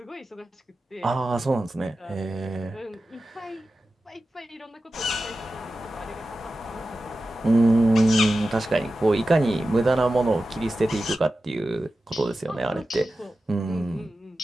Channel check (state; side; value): normal; both; correlation 0.94